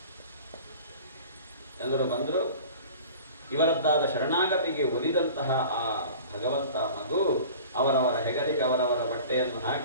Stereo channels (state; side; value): inverted; both; correlation -0.42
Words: ಎಲ್ಲರೂ ಬಂದರು. ಇವರದ್ದಾದ ಶರಣಾಗತಿಗೆ ಒಲಿದಂತಹ ಆ ಭಗವಂತ ಮಗು ಅವರವರ ಹೆಗಲಿಗೆ ಅವರವರ ಬಟ್ಟೆಯನ್ನು